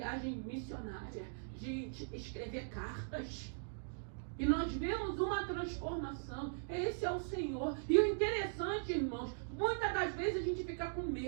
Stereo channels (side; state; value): left; silent; digital silence